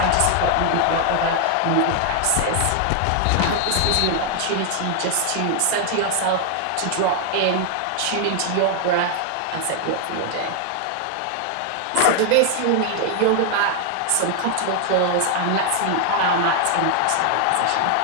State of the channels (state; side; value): different; both; correlation 0.00